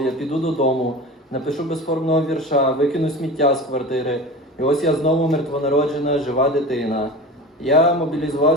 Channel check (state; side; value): normal; both; correlation 0.33